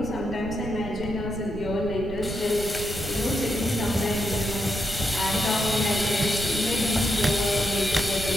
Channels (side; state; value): right; noise; rumble, 8 dB below the sound